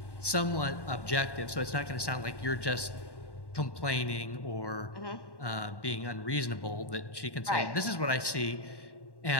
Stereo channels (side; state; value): right; late; 1.1 ms